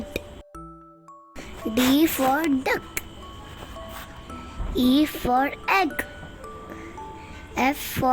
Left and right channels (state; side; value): identical; both; correlation 1.00